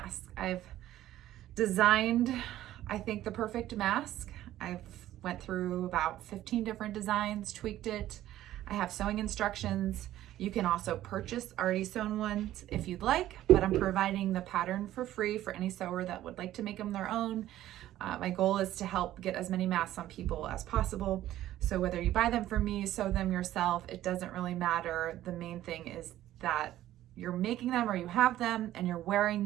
I've designed, I think, the perfect mask. I've went through about 15 different designs, tweaked it. I have sewing instructions. You can also purchase already sewn ones if you'd like, but I'm providing the pattern for free for any sewer that would like to make them their own. My goal is to help get as many masks on people as possible. So whether you buy them from me, sew them yourself, it doesn't really matter. The main thing is that you're making them or you have them and you're wearing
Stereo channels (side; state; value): left; quieter; 13.7 dB